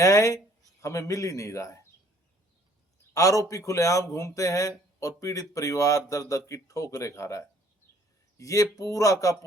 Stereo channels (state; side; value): normal; both; correlation 0.60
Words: हमें मिल ही नहीं रहा है। आरोपी खुलेआम घूमते हैं और पीड़ित परिवार दर दर की ठोकरें खा रहा है। ये पूरा का